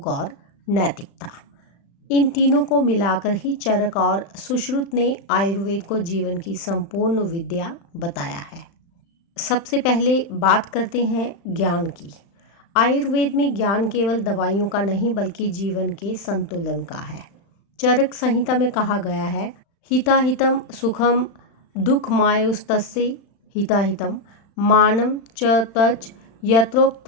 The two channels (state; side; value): late; right; 35 ms